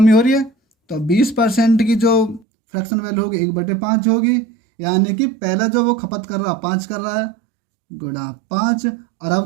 हो रही है, तो 20% की जो फ्रैक्शन वैल्यू होगी 1/5 होगी, यानी कि पहला जो वो खपत कर रहा 5 कर रहा है, गुणा 5, और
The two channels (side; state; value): left; drops out; at 2.5 s